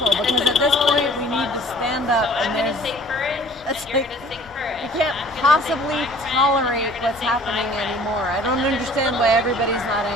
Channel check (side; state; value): both; normal; correlation 0.51